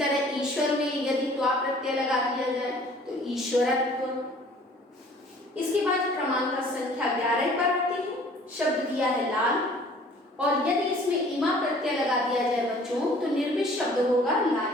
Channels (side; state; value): both; normal; correlation 0.53